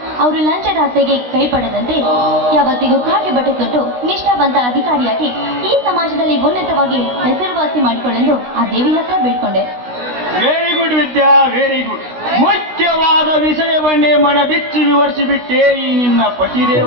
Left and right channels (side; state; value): left; late; 16 ms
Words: ಅವರು ಲಂಚದಾಸೆಗೆ ಕೈಪಡದಂತೆ ಯಾವತ್ತಿಗೂ ಕಾಗೆ ಬಟ್ಟೆ ತೊಟ್ಟು ನಿಷ್ಠಾವಂತ ಅಧಿಕಾರಿಯಾಗಿ ಈ ಸಮಾಜದಲ್ಲಿ ಉನ್ನತವಾಗಿ ಹೆಸರುವಾಸಿ ಮಾಡಿಕೊಳ್ಳೆಂದು ಆ ದೇವಿ ಹತ್ರ ಬೇಡ್ಕೊಂಡೆ. ವೆರಿ ಗುಡ್ ವಿದ್ಯಾ, ವೆರಿ ಗುಡ್. ಮುಖ್ಯವಾದ ವಿಷಯವನ್ನೇ ಮನ ಬಿಚ್ಚಿ ವಿವರಿಸಿಬಿಟ್ಟೆ ಈ ನಿನ್ನ